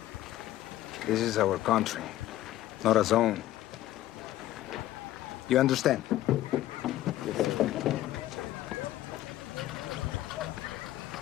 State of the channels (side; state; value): right; quieter; 14.4 dB